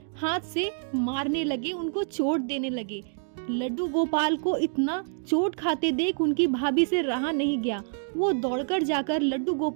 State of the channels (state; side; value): silent; left; digital silence